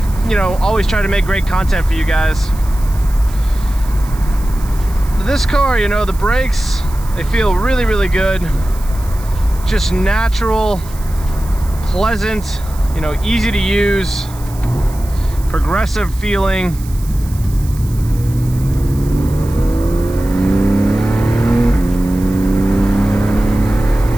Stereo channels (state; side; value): noise; right; hiss, 19 dB below the sound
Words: you know, always try to make great content for you guys. This car, you know, the brakes, they feel really, really good. Just natural, pleasant, you know, easy to use, progressive feeling.